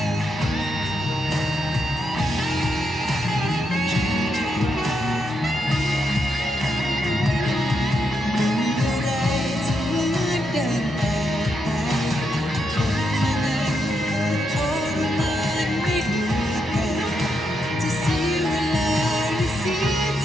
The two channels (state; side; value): normal; both; correlation 0.81